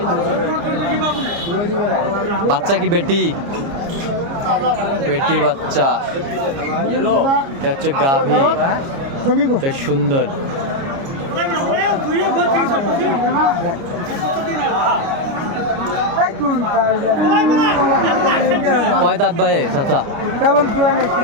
বাচ্চা কি বেটি? বেটি বাচ্চা, এটা হচ্ছে গাভী, বেশ সুন্দর। কয় দাঁত ভাই চাচা?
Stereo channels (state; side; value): late; left; 29 ms